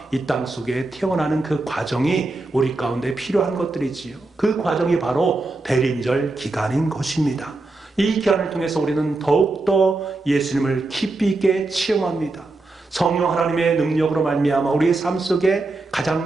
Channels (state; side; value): quieter; left; 3.2 dB